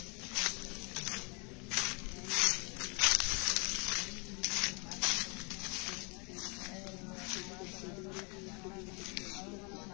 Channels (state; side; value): quieter; right; 32.0 dB